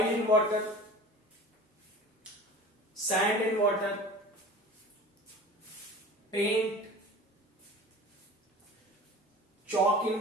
in water, sand in water, paint, chalk in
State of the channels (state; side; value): normal; both; correlation 0.39